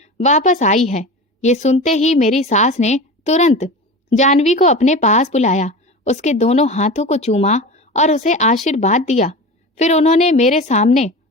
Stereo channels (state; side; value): normal; both; correlation 0.30